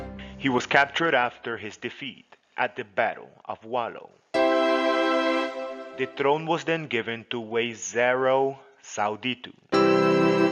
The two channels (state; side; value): identical; both; correlation 1.00